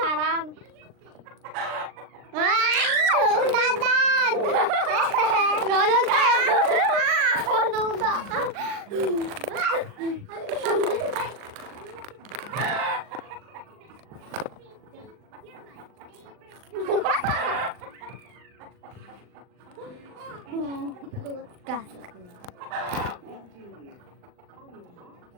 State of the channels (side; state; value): left; late; 39 ms